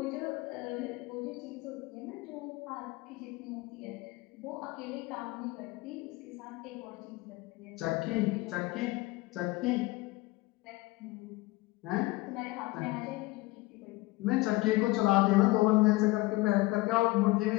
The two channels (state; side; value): quieter; right; 21.0 dB